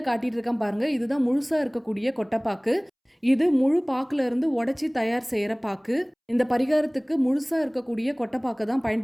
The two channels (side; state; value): both; identical; correlation 1.00